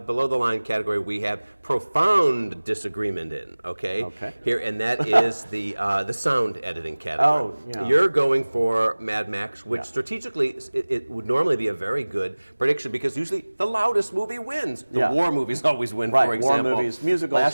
the line category we have profound disagreement in. Okay. Here, and that is the sound editing category. Oh, yeah. You're going for Mad Max, which strategically it would normally be a very good prediction because usually the loudest movie wins. The war movies always win, Right, for example. war movies, musicals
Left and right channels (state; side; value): inverted; both; correlation -1.00